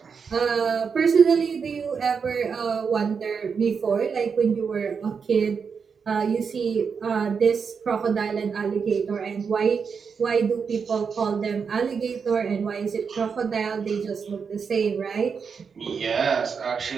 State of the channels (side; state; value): left; quieter; 6.0 dB